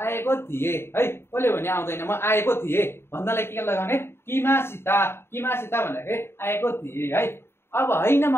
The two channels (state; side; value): late; right; 0.12 ms